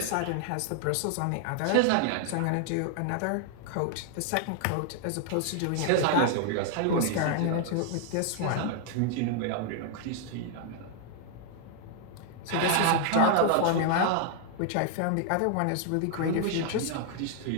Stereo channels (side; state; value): both; different; correlation 0.00